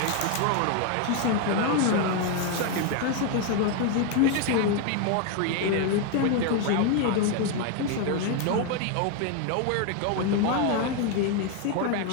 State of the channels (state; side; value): different; both; correlation 0.01